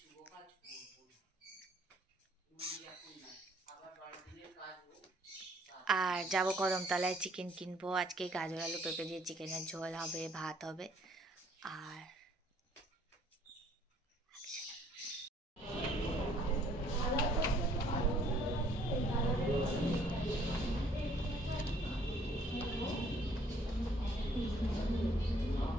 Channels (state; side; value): normal; both; correlation 0.62